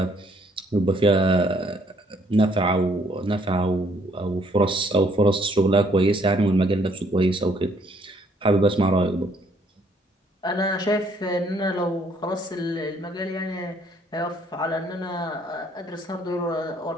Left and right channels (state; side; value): normal; both; correlation 0.65